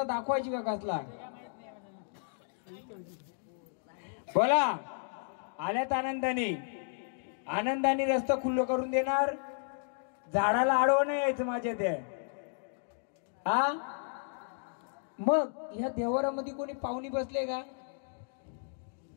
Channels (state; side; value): silent; right; digital silence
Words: दाखवायची का कसला? बोला. आल्यात आनंदाने, आनंदाने रस्ता खुल्लं करून देणार. झाडाला आडवं नाही यायचं माझ्या त्या. हा मग ह्या देवारामध्ये कोणी पाहुणी बसले का?